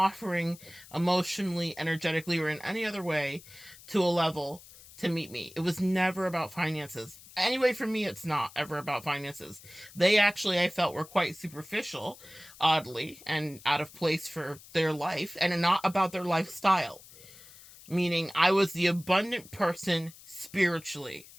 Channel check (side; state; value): left; noise; hiss, 20 dB below the sound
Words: emotionally, energetically, or in any other way to a level to meet me. It was never about finances. Anyway, for me, it's not ever about finances. They actually, I felt, were quite superficial, oddly, and out of place for their life, and not about their lifestyle. Meaning, I was the abundant person spiritually.